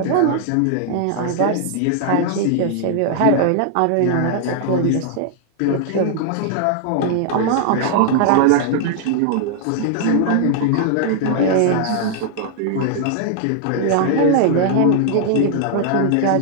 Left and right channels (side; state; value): both; different; correlation -0.01